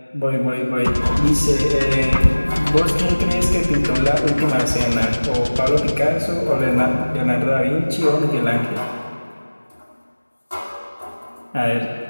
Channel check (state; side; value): inverted; both; correlation -1.00